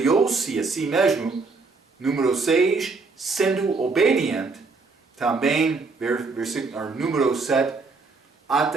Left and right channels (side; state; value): left; quieter; 4.2 dB